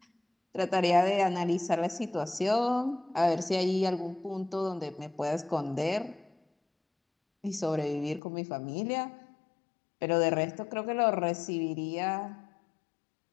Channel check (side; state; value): right; drops out; at 8.2 s